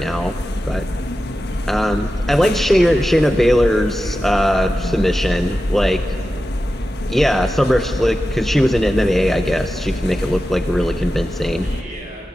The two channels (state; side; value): normal; both; correlation 0.92